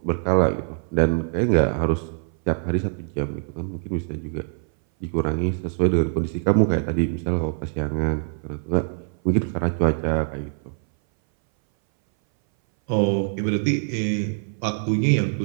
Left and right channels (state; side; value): silent; left; 60 dB below the other